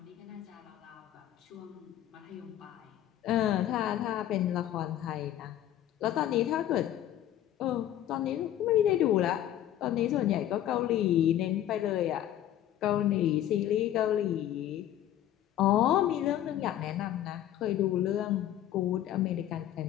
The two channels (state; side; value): quieter; right; 12.1 dB